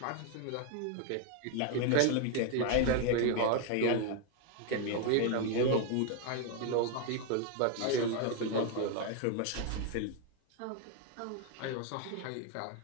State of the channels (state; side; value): different; both; correlation 0.01